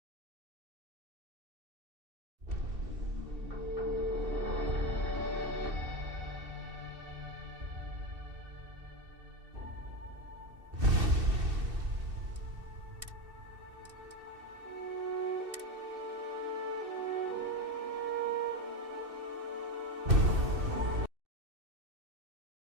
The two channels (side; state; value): left; late; 2.7 ms